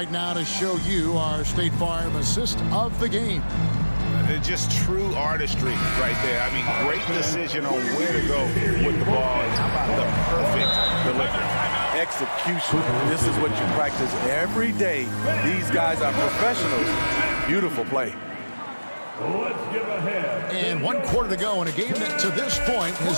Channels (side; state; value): both; inverted; correlation -1.00